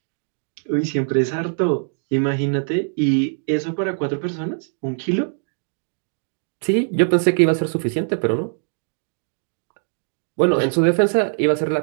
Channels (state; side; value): silent; left; 61 dB below the other